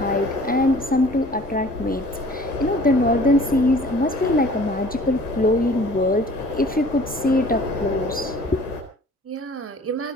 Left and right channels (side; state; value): both; normal; correlation 0.50